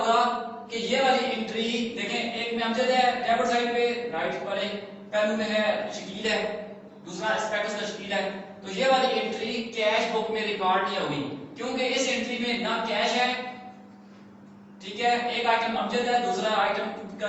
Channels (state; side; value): identical; both; correlation 1.00